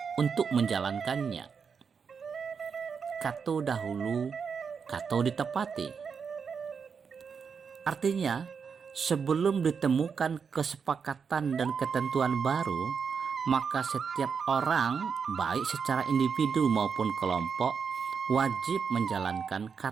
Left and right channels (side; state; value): left; quieter; 6.1 dB